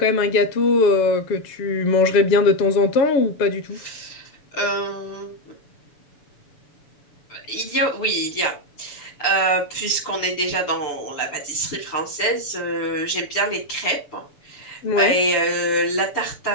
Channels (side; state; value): right; late; 6.9 ms